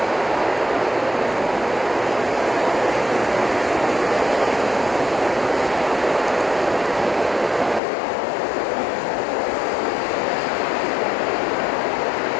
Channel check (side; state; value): right; drops out; at 7.8 s